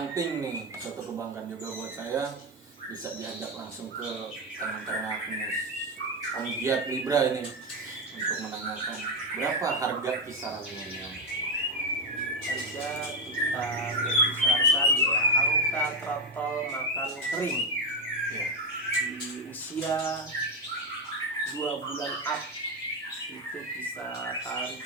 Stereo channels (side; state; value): both; normal; correlation 0.09